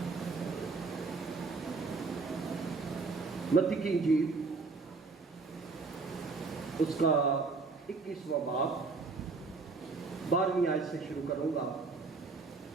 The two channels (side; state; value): left; quieter; 4.2 dB